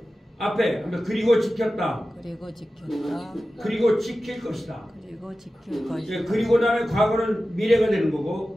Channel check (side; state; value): both; normal; correlation 0.94